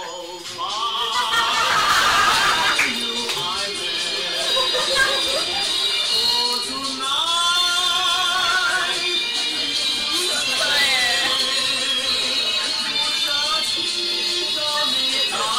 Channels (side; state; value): both; identical; correlation 1.00